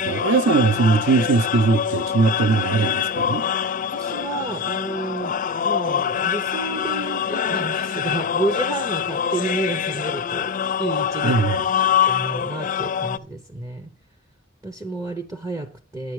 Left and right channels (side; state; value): both; normal; correlation 0.18